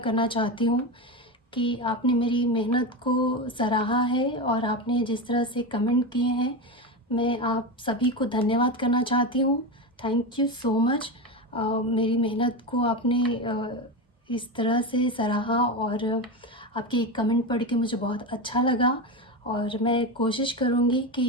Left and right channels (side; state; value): both; normal; correlation 0.18